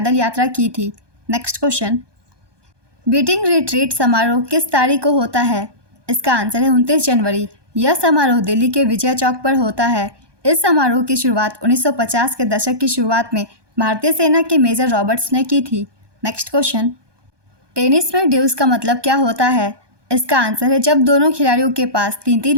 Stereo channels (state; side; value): late; left; 1.2 ms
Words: यात्रा की थी। नेक्स्ट क्वेश्चन, बीटिंग रिट्रीट समारोह किस तारीख को होता है? इसका आंसर है 29 जनवरी। यह समारोह दिल्ली के विजय चौक पर होता है। इस समारोह की शुरुआत 1950 के दशक की शुरुआत में भारतीय सेना के मेजर रॉबर्ट्स ने की थी। नेक्स्ट क्वेश्चन, टेनिस में ड्यूस का मतलब क्या होता है? इसका आंसर है जब दोनों खिलाड़ियों के पास